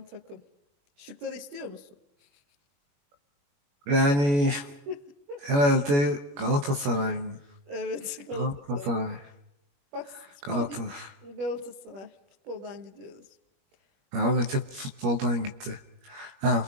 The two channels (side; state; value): left; late; 21 ms